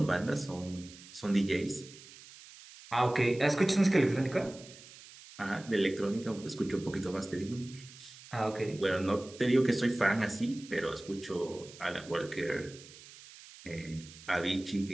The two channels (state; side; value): noise; right; hiss, 19 dB below the sound